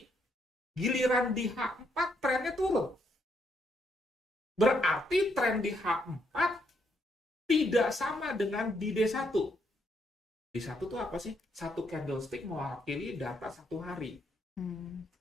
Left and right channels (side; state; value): both; normal; correlation 0.75